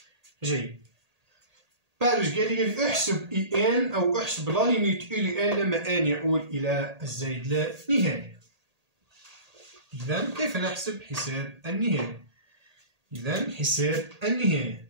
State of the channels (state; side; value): late; left; 1.8 ms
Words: جيد. بعد قال لي احسب ان او احسب لا ليميت ان لما ان يؤول الى الزائد لا نهاية. اذا كيف نحسب حساب النهاية؟ اذا حساب النهاية،